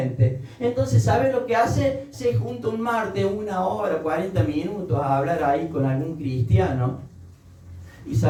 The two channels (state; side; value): identical; both; correlation 1.00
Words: Entonces, ¿sabe lo que hace? Se junta un martes, 1 hora, 40 minutos a hablar ahí con algún cristiano. Y